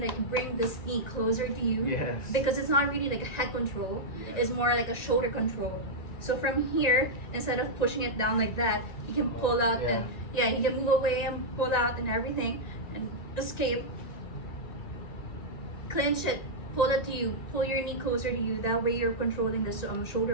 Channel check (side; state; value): right; late; 1.9 ms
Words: like bring this knee closer to you. Yes. Because it's not really like a head control. Yeah. It's more like a shoulder control. So from here, instead of pushing it down like that, he can pull out and he can move away and pull out and everything and escape. Clinch it, pull it to you, pull your knee closer to you. That way you're controlling this